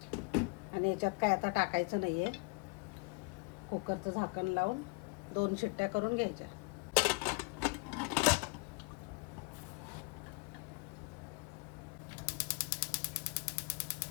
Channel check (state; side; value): quieter; right; 30.7 dB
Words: आणि याच्यात काय आता टाकायचं नाही आहे. कुकरचं झाकण लावून 2 शिट्ट्या करून घ्यायच्या.